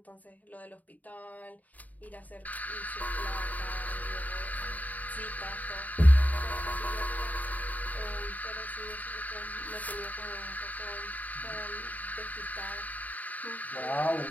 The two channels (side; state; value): right; late; 0.076 ms